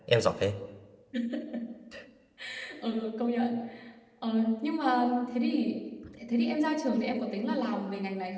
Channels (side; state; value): both; identical; correlation 1.00